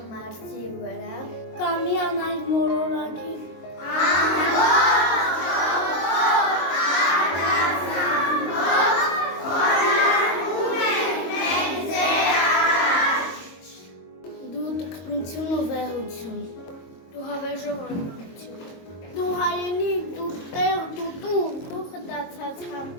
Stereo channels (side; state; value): right; late; 22 ms